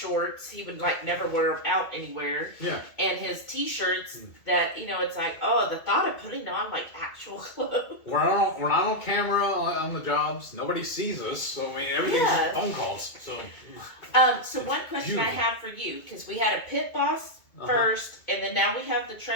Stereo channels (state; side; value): late; right; 2.2 ms